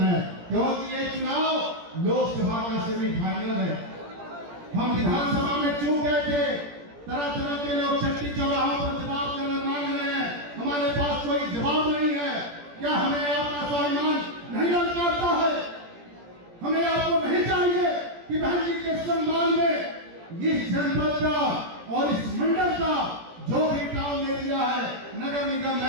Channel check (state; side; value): late; left; 17 ms